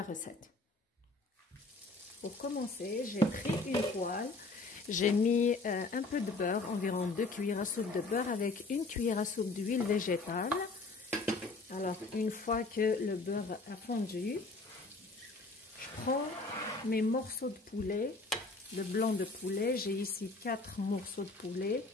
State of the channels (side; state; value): right; quieter; 3.5 dB